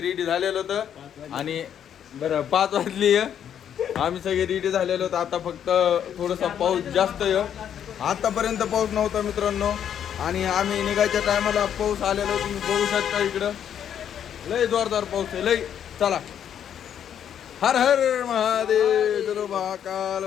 रेडी झालेलो होतो आणि बरं 5 वाजली. आम्ही सगळे रेडी झालेलो होतो. आता फक्त थोडासा पाऊस जास्त आहे. आतापर्यंत पाऊस नव्हता मित्रांनो आणि आम्ही निघायच्या टायमाला पाऊस आलेलो. तुम्ही बघू शकता इकडं लय जोरदार पाऊस आहे लय. चला हर हर महादेव, चलो महाकाल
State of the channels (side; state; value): right; quieter; 9.2 dB